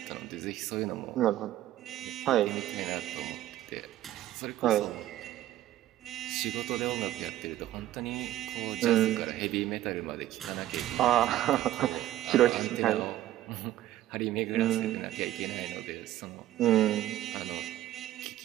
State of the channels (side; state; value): left; quieter; 13.9 dB